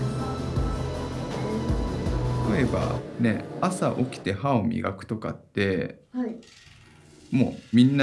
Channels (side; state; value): both; identical; correlation 1.00